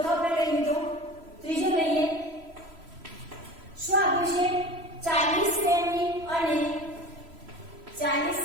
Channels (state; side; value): late; left; 3.0 ms